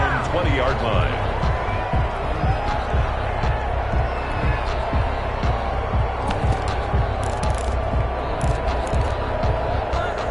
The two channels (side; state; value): both; identical; correlation 1.00